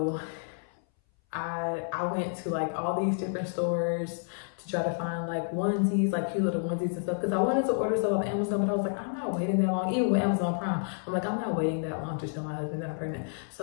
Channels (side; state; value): right; silent; 58 dB below the other